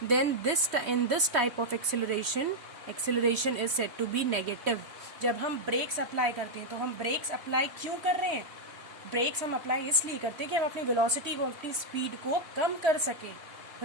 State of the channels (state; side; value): late; left; 3.1 ms